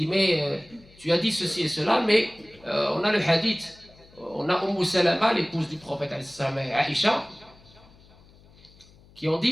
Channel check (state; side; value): noise; left; hum, 26 dB below the sound